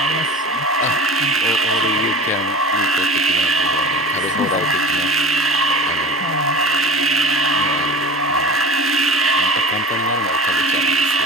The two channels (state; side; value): normal; both; correlation 0.35